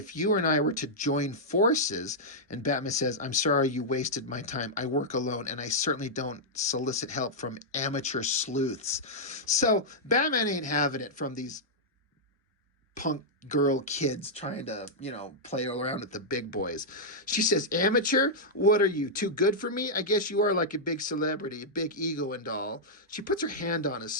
you and I were to join forces, and Batman says, I'm sorry you wasted my time. I work alone, and I certainly don't solicit help from amateur sleuths. So Batman ain't having it from these punk girl kids trying to, play around with the big boys. She says, amateur? What are you, too good for me? I guess you are like a big celebrity, a big ego and all. She puts her hand on his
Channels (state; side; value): normal; both; correlation -0.07